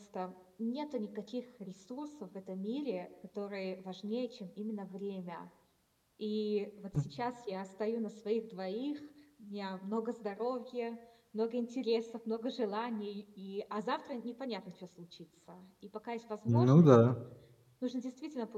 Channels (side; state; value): both; identical; correlation 1.00